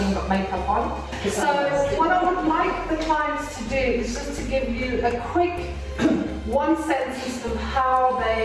got makeup on. So what I would like the clients to do is just to give you a quick one sentence of how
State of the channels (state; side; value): identical; both; correlation 1.00